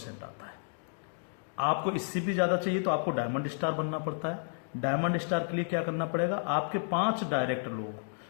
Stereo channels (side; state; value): right; silent; digital silence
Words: आता है। आपको इससे भी ज्यादा चाहिए तो आपको डायमंड स्टार बनना पड़ता है। डायमंड स्टार के लिए क्या करना पड़ेगा? आपके 5 डायरेक्ट लोग